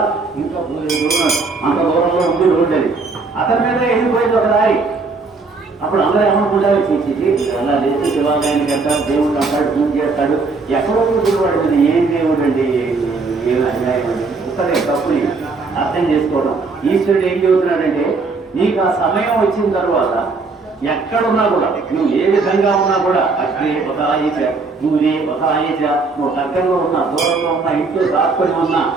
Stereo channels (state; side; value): quieter; left; 4.1 dB